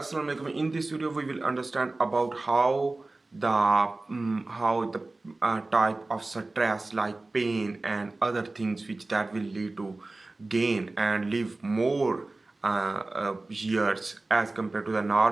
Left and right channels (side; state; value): left; quieter; 3.1 dB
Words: alaikum. In this video, we will understand about how the type of stress like pain and other things which that will lead to gain and live more years as compared to the